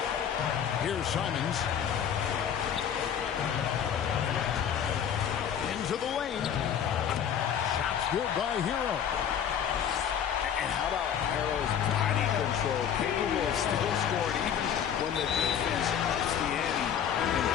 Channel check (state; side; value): quieter; right; 8.7 dB